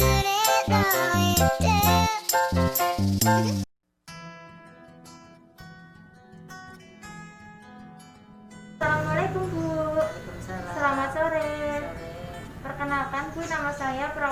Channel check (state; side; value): identical; both; correlation 1.00